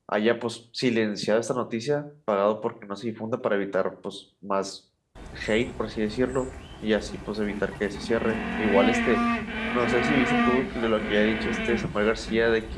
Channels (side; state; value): both; identical; correlation 1.00